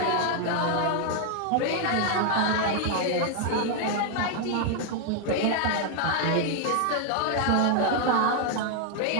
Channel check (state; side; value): different; both; correlation 0.00